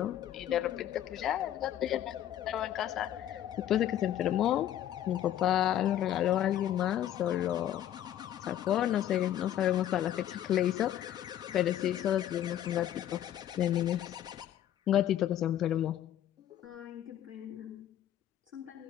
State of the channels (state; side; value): quieter; right; 11.6 dB